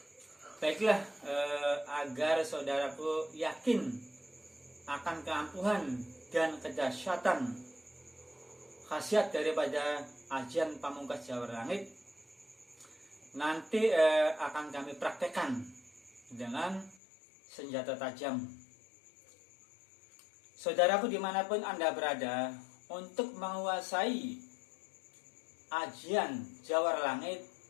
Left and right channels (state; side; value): drops out; right; at 16.9 s